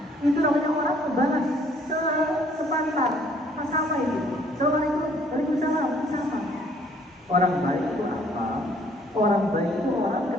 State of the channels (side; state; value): both; normal; correlation 0.61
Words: Itu namanya orang membalas sepantar, sama itu. Assalamualaikum, waalaikumsalam, sama. Orang baik itu apa? Orang baik itu orang